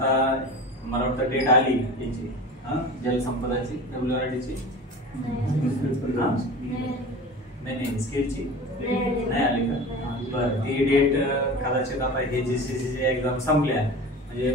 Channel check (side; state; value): both; normal; correlation 0.35